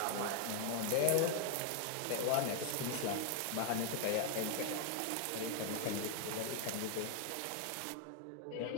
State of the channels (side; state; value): both; different; correlation 0.00